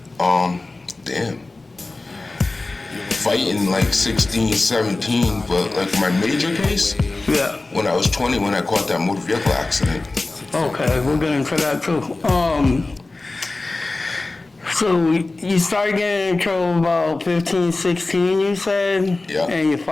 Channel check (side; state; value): right; quieter; 3.2 dB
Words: Damn. Fighting like 16, 17, but like my major case? Yeah. When I was 20, when I caught that motor vehicle accident. Okay, we'll get into that too. So you started getting in trouble about 15, 16, you said? Yeah. And you're